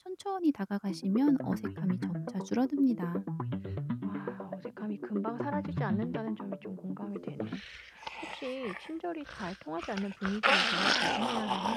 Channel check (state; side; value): identical; both; correlation 1.00